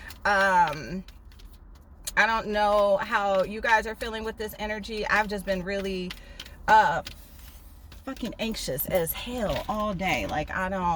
I don't know how you guys are feeling with this energy. I've just been really fucking anxious as hell all day. Like I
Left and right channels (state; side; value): identical; both; correlation 1.00